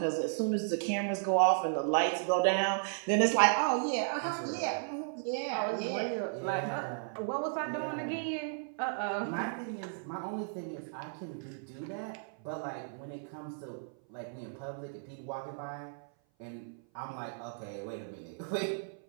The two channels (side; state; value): left; silent; 55 dB below the other